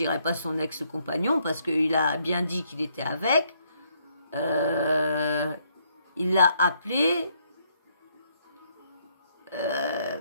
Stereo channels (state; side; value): inverted; both; correlation -0.71